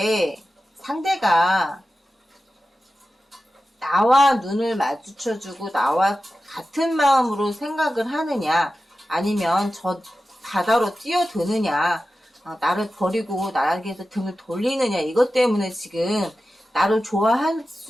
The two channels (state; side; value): normal; both; correlation 0.93